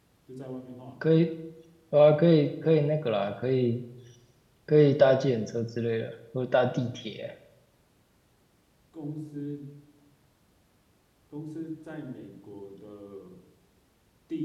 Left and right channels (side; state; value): both; identical; correlation 1.00